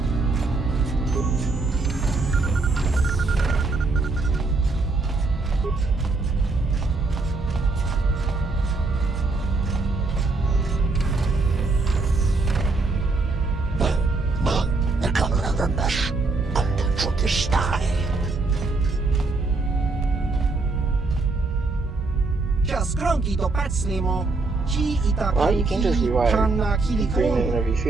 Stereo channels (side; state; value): left; quieter; 3.6 dB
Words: Well, you can just rewrite the agreement whenever you